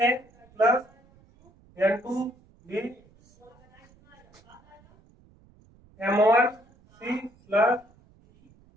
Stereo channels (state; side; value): noise; right; rumble, 29 dB below the sound